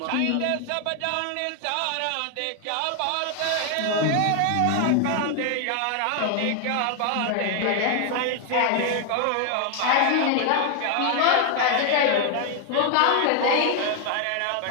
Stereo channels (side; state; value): both; different; correlation 0.00